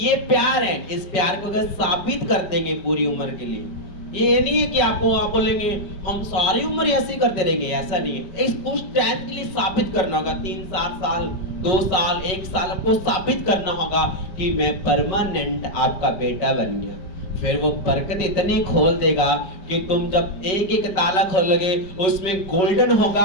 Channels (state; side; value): late; right; 5.4 ms